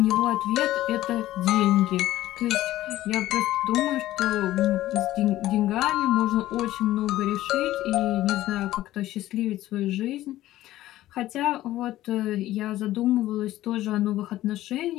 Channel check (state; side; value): quieter; right; 14.9 dB